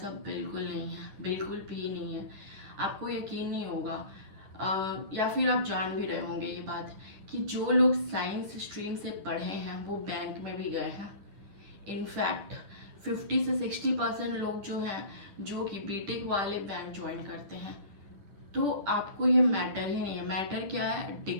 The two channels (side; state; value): left; late; 10 ms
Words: बिल्कुल नहीं है, बिल्कुल भी नहीं है। आपको यकीन नहीं होगा, या फिर आप जान भी रहे होंगे ये बात, कि जो लोग साइंस स्ट्रीम से पढ़े हैं वो बैंक में भी गए हैं। इनफैक्ट 50 से 60% लोग जो हैं, जो कि बीटेक वाले बैंक ज्वाइन करते हैं। तो आपको ये मैटर ही नहीं है। मैटर क्या है?